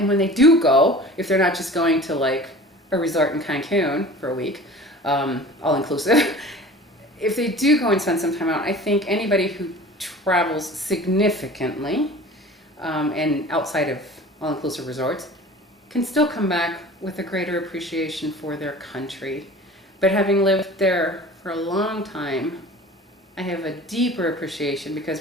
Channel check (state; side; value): normal; both; correlation 0.41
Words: when they do go, if they're not just going to like a resort in Cancun for a week, all inclusive, if they do go and spend some time out, I think anybody who travels significantly and outside of all-inclusive resorts can still come back with a greater appreciation for their country. But having lived there for a long time, I have a deeper appreciation,